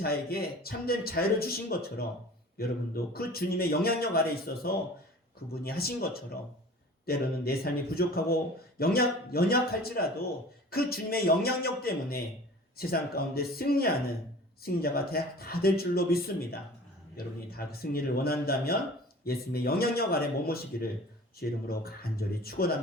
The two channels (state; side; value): normal; both; correlation 0.43